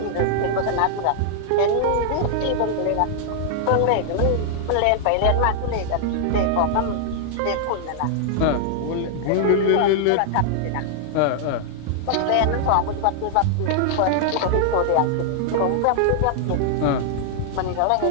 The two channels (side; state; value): both; different; correlation 0.00